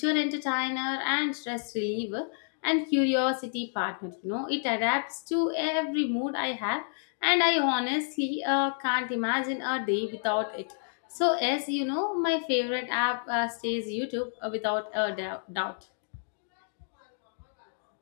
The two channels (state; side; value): silent; right; digital silence